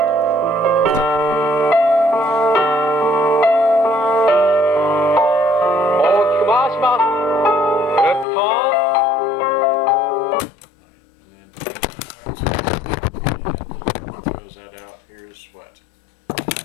That out. Here's what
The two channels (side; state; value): right; drops out; at 8.2 s